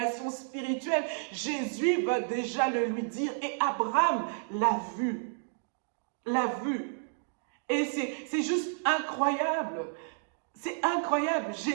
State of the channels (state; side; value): silent; left; digital silence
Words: spirituelle, Jésus va déjà le lui dire. Et Abraham l'a vu. Et c'est juste incroyable. C'est incroyable.